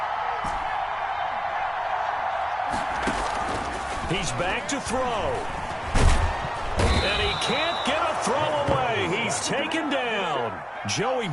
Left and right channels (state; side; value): identical; both; correlation 1.00